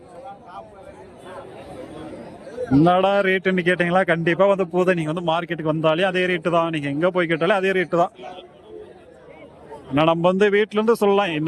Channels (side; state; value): both; identical; correlation 1.00